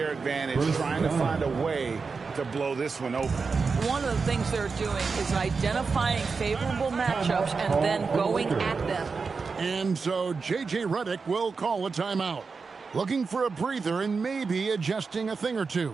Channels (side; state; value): left; quieter; 4.8 dB